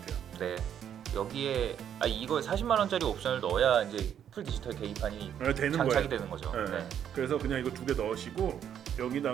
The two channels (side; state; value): left; quieter; 9.3 dB